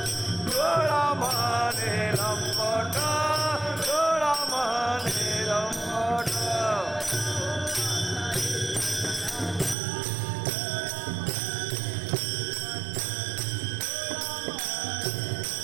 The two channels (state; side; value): drops out; left; at 9.8 s